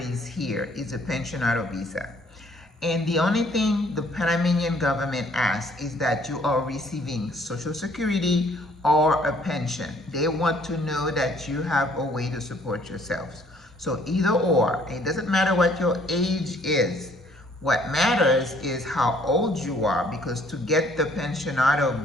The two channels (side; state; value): both; normal; correlation 0.62